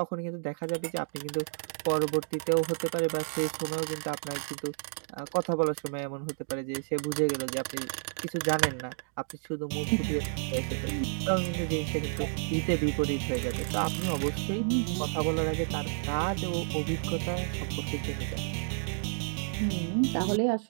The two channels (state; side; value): silent; left; digital silence